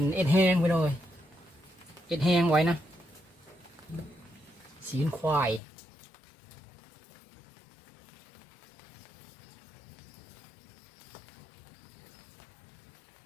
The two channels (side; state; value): right; drops out; at 5.6 s